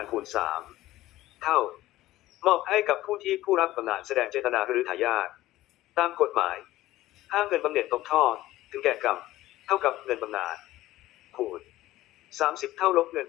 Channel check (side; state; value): right; quieter; 15.9 dB